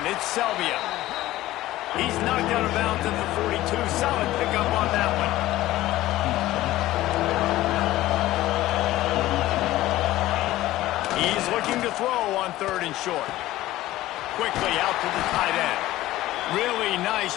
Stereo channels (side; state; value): right; quieter; 16.0 dB